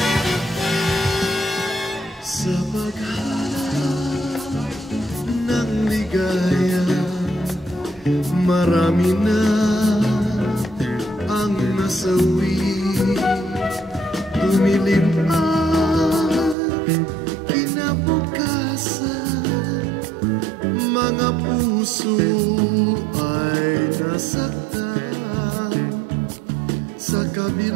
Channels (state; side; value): drops out; left; at 16.6 s